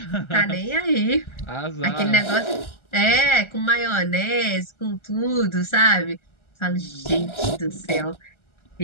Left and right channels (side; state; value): right; late; 1.3 ms